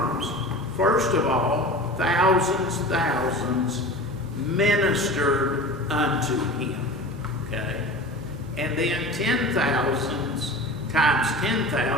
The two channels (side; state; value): both; normal; correlation 0.35